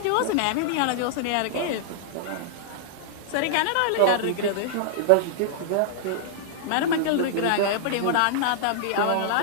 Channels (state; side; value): different; both; correlation -0.01